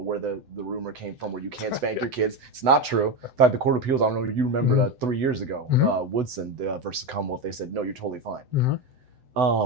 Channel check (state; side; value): late; left; 7.9 ms